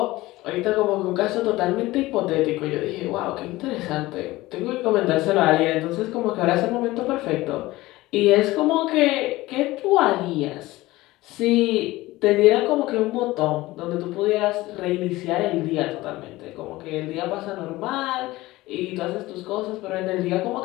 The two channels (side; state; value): right; quieter; 18.7 dB